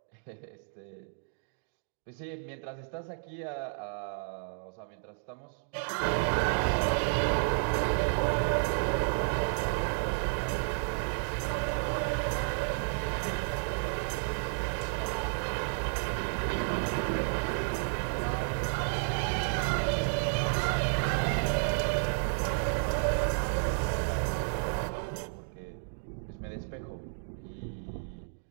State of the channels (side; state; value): left; silent; digital silence